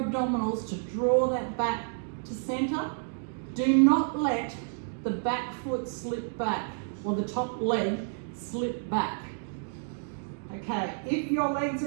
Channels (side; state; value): left; silent; digital silence